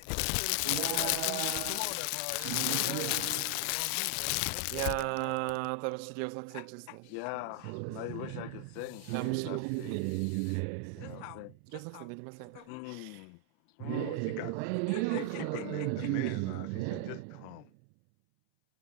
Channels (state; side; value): different; both; correlation 0.00